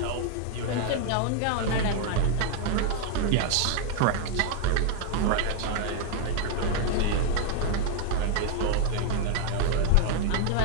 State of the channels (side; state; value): both; different; correlation 0.00